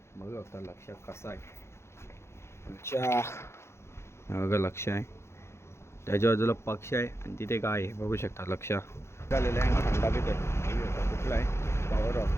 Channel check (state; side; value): late; right; 0.13 ms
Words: बघू आता लक्ष कसं आहे. आमच्या बघा लक्ष आहे, त्याच्या बाजूला पक्ष आहे आणि तिथे गाय आहे. बघू शकता लक्ष आलेलं आहे. थंडा पित आहे. कुठला आहे?